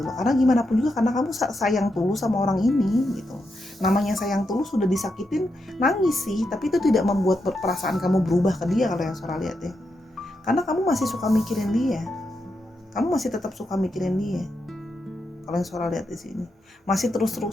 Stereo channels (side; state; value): both; normal; correlation 0.84